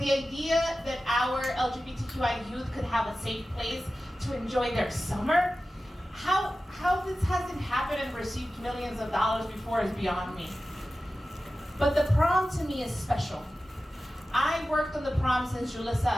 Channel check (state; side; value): normal; both; correlation 0.95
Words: idea that our LGBTQI youth could have a safe place to enjoy their summer, how this hasn't happened and received millions of dollars before is beyond me. But the prom to me is special. I worked on the prom since